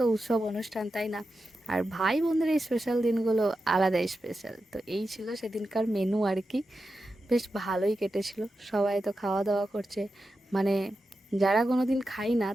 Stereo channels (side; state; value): both; normal; correlation 0.90